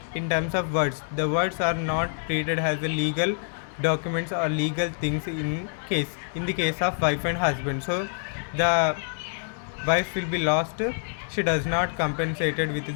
words. The words are not treated as a legal documents or legal things in the case of wife and husband. So the wife will be lost. She does not compensated with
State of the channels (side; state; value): right; silent; digital silence